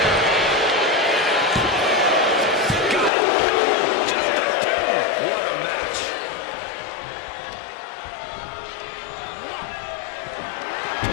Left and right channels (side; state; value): right; drops out; at 3.1 s